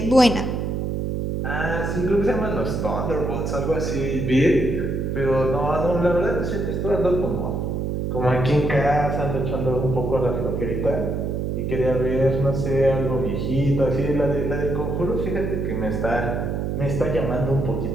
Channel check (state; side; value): noise; right; hum, 1 dB below the sound